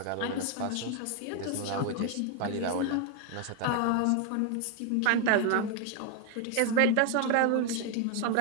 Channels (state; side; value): different; both; correlation 0.01